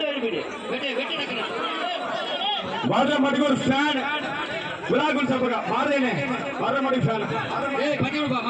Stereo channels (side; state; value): both; identical; correlation 1.00